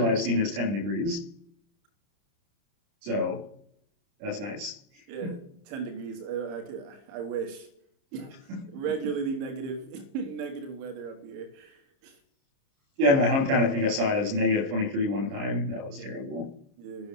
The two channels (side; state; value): left; late; 30 ms